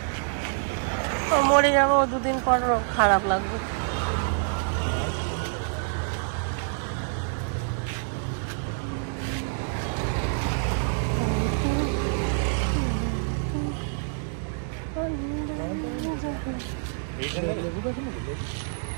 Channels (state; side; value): silent; left; digital silence